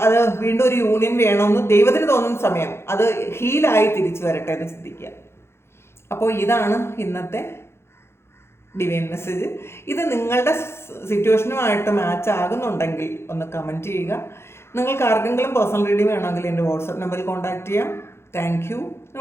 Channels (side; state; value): right; late; 0.12 ms